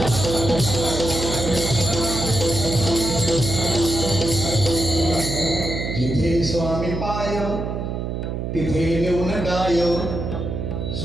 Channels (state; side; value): noise; right; hum, 4 dB below the sound